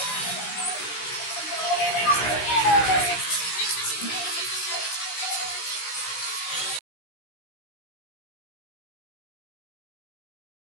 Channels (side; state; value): right; late; 16 ms